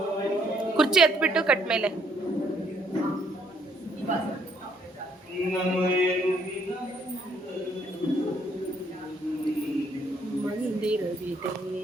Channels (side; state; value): both; normal; correlation 0.68